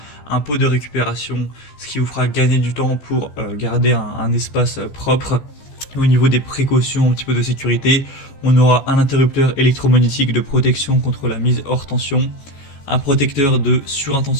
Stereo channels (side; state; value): right; late; 14 ms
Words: un pot de récupération, ce qui vous fera gagner du temps pour garder un espace propre. Au niveau des précautions, un petit peu de sécurité, on aura un interrupteur électromagnétique de protection contre la mise hors tension, un protecteur de